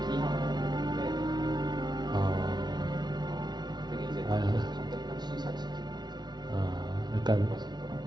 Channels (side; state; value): left; late; 0.20 ms